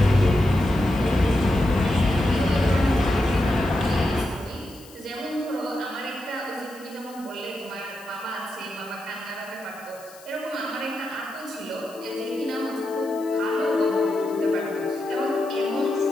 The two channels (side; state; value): left; noise; hiss, 22 dB below the sound